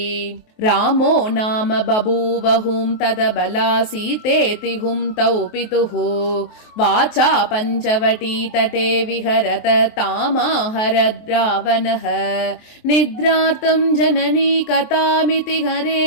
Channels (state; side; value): late; right; 23 ms